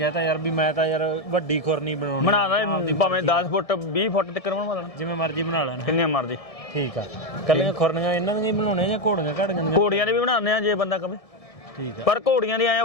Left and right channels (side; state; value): right; late; 1.7 ms